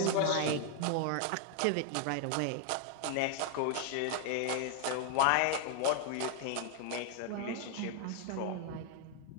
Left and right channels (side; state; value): both; different; correlation 0.00